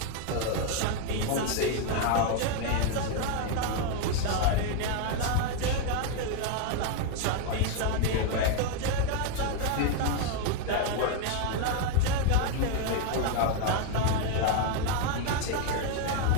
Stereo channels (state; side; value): different; both; correlation 0.01